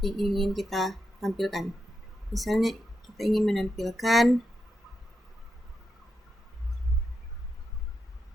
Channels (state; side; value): normal; both; correlation 0.85